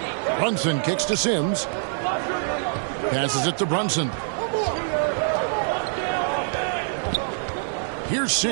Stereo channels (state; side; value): silent; left; digital silence